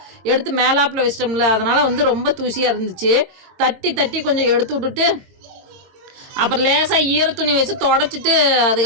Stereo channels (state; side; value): late; left; 22 ms